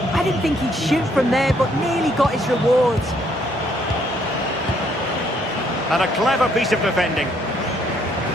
I didn't think he'd shoot from there, but nearly got his rewards. And a clever piece of defending.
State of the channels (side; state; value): both; normal; correlation 0.68